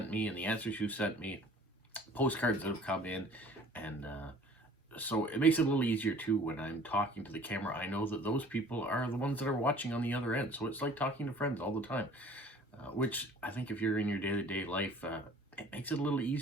me and the answers you've sent me, postcards that have come in, and so it makes it a little easier too when I'm talking to the camera. I know that those people are the ones that are watching on the other end, so it's like talking to friends all the time, which I think if you're in your day-to-day life, it makes it a little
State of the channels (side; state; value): both; normal; correlation 0.50